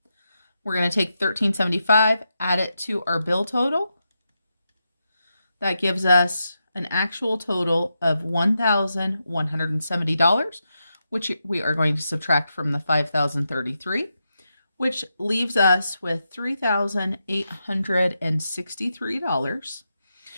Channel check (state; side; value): inverted; both; correlation -0.87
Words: We're going to take $13.75, add it to our bill total. That gives us an actual total of $1,170, which we are going to subtract from the $5,033. Which leaves us with $3,863.